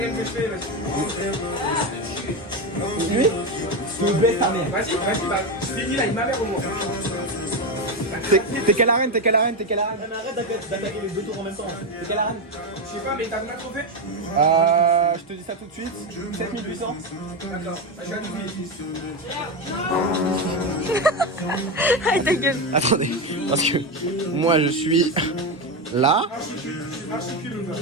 que je fais, vas-y. Lui? Tu baisses ta mère. Vas-y, bah, finis là, il m'a l'air au moins. T'es quelle arène? Arrête d'attaquer les 2 tours en même temps. T'es quelle arène? Je sais pas, mais t'as combien de trophées? Je te dis ça tout de suite. 7800. D'accord, bah, je vais à 12 000. Arrête ta gueule. Attendez, parce que moi je suis là.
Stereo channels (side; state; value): both; normal; correlation 0.12